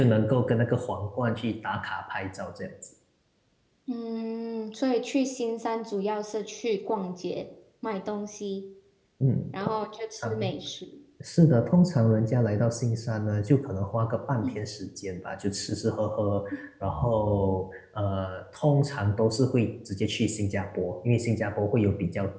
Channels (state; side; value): identical; both; correlation 1.00